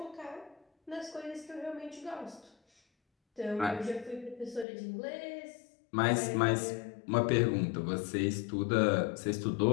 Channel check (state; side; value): drops out; right; at 4.7 s